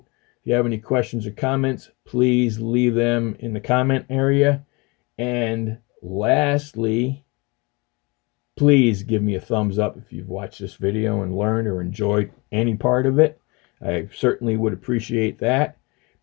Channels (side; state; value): right; quieter; 27.1 dB